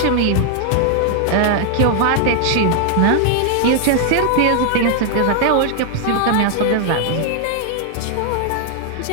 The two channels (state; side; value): different; both; correlation 0.00